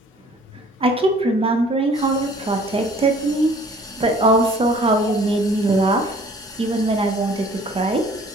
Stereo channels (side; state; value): both; normal; correlation 0.53